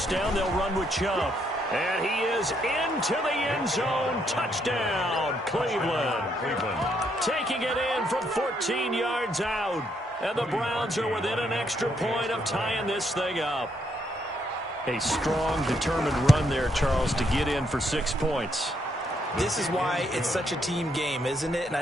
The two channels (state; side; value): normal; both; correlation 0.74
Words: down, they'll run with Chubb. And he is into the end zone. Touchdown, Cleveland. Taking it in from 14 yards out. And the Browns are within an extra point of tying this thing up. A strong, determined run there, Charles, to get in for 6 points. This is why it's such a team game, isn't it? And I